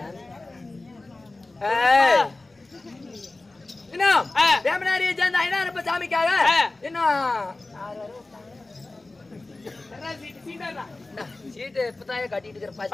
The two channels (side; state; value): right; quieter; 3.1 dB